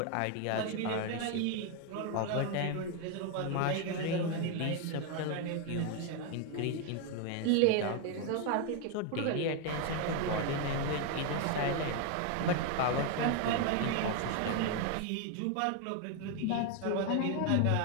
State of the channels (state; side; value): different; both; correlation 0.01